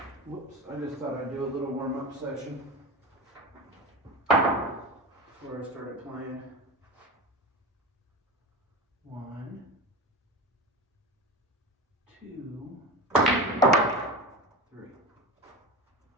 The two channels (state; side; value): normal; both; correlation 0.26